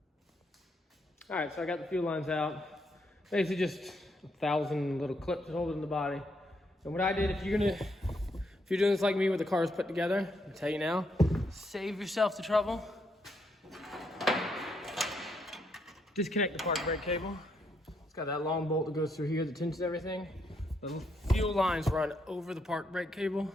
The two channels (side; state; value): both; normal; correlation 0.76